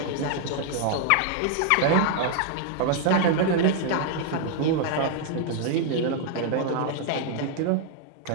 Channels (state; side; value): different; both; correlation 0.00